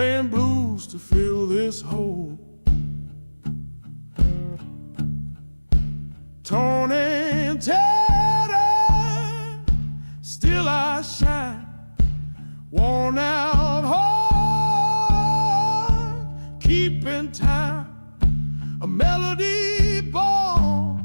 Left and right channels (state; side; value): inverted; both; correlation -1.00